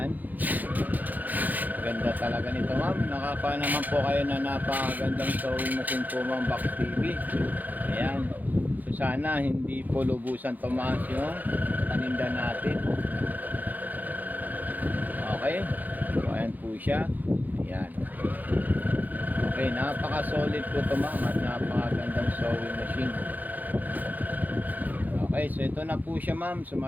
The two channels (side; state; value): left; late; 0.083 ms